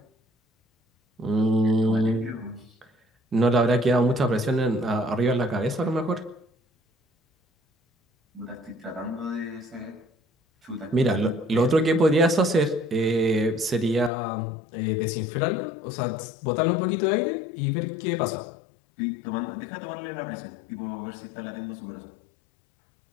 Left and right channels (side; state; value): right; drops out; at 14.1 s